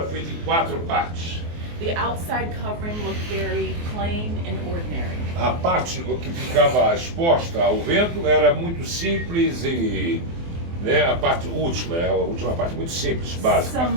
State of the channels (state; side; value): late; left; 24 ms